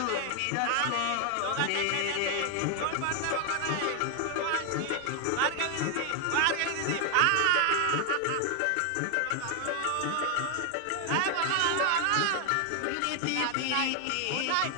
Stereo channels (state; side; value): different; both; correlation 0.01